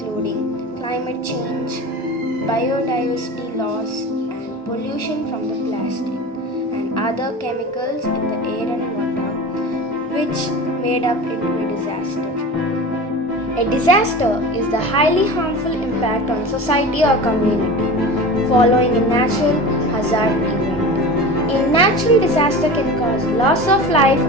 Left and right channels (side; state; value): both; normal; correlation 0.32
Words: climate change, biodiversity loss, pollution from the plastic and other chemicals in the air and water, which made up into a disaster. A disaster is the highly harmful impact on society or community following a natural hazard event. A natural disaster can cause loss of life